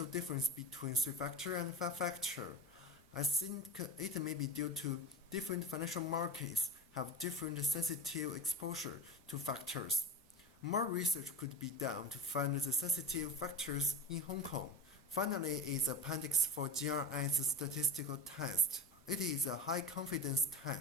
difference between 3-factor and 5-factor. I think it may be due to different financial markets have different sensitive exposure to factors. More research could be done to find the sensitive factors in Hong Kong. Finally is appendix for GRS statistical test. It is a high confidence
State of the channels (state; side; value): normal; both; correlation 0.26